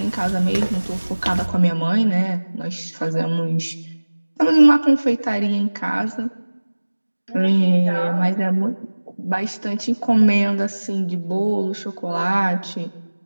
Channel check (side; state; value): both; inverted; correlation -1.00